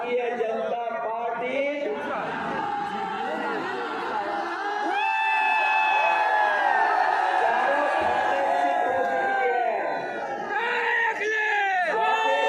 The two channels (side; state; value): both; identical; correlation 1.00